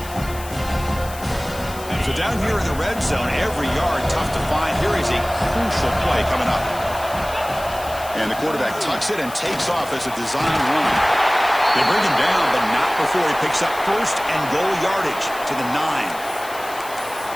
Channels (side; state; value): left; noise; hiss, 15 dB below the sound